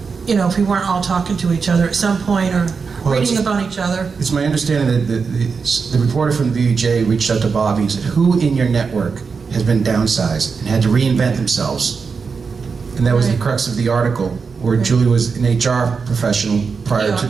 we weren't all talking to each other at some point or reading about each other? It's my understanding that the reporter from the VJ reached out to Bobby and said, who in your network has been downsized and had to reinvent themselves? And that was the crux of the article, where Julie was an HR professional prior to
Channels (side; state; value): left; quieter; 5.3 dB